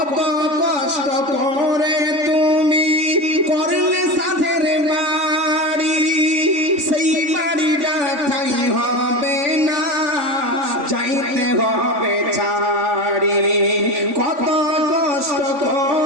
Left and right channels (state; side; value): late; left; 3.5 ms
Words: কষ্ট করে তুমি করলে সাধের বাড়ি, সেই বাড়িটা ঠাই হবে না, যাইতে হবে ছাড়ি। কত কষ্ট